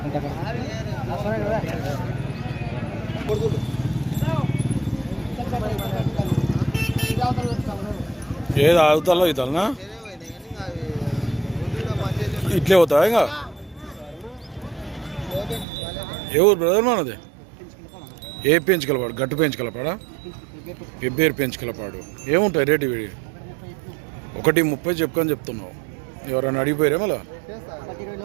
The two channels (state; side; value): drops out; left; at 15.7 s